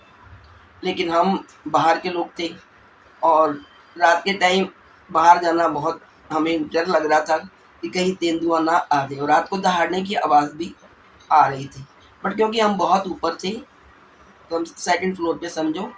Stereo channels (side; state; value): both; identical; correlation 1.00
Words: लेकिन हम बाहर के लोग थे और रात के टाइम बाहर जाना बहुत हमें डर लग रहा था कि कहीं तेंदुआ ना आ जाए, और रात को दहाड़ने की आवाज़ भी आ रही थी। बट क्योंकि हम बहुत ऊपर थे, तो हम सेकंड फ्लोर पे समझो,